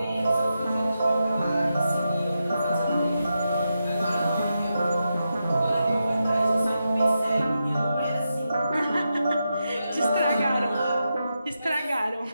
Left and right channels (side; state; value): both; inverted; correlation -0.87